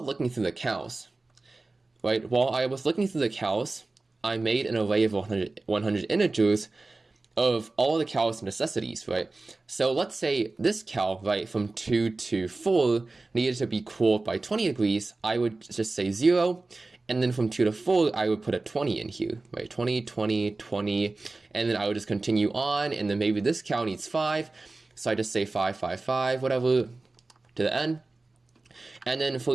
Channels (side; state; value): left; quieter; 3.3 dB